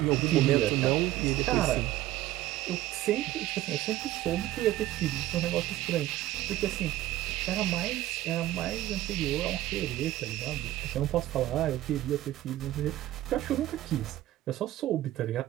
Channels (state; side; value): quieter; left; 15.0 dB